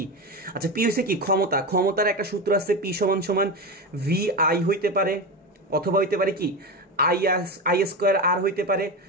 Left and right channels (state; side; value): normal; both; correlation 0.19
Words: আচ্ছা, P হচ্ছে কি ক্ষমতা, ক্ষমতার একটা সূত্র আছে, P = VI হইতে পারে, অথবা হইতে পারে কি I² R হইতে পারে,